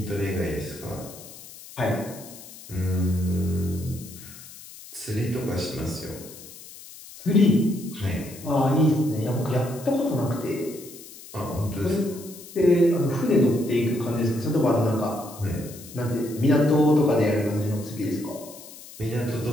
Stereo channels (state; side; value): noise; left; hiss, 17 dB below the sound